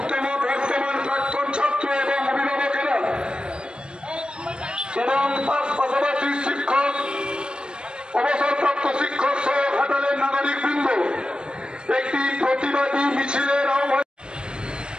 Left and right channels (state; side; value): late; left; 0.052 ms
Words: প্রাক্তন ছাত্র এবং অভিভাবকেরা এবং তার পাশাপাশি শিক্ষক অবসরপ্রাপ্ত শিক্ষক সহ ঘাটালের নাগরিক বৃন্দ একটি প্রতিবাদী মিছিলের আহ্বান